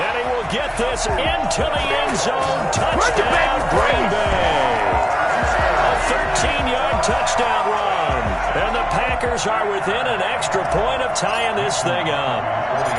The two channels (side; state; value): both; identical; correlation 1.00